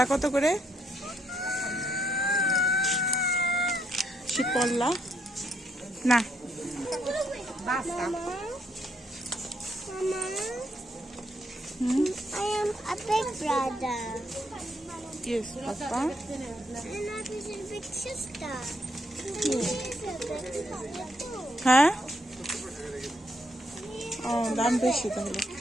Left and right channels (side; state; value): both; normal; correlation 0.75